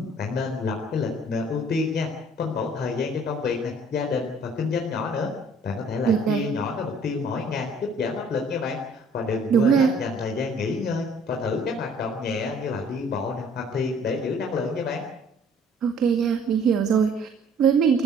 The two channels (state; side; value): normal; both; correlation 0.56